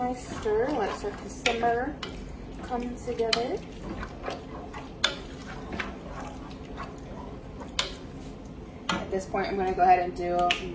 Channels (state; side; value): identical; both; correlation 1.00